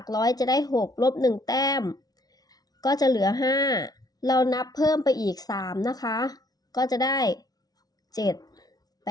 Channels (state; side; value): late; right; 0.19 ms